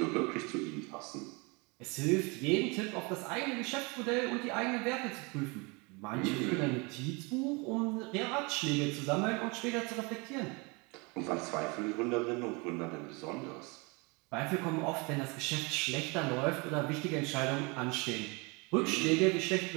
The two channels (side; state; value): left; quieter; 28.7 dB